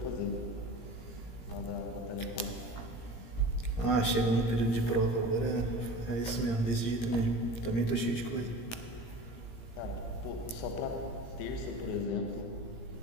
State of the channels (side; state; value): right; late; 17 ms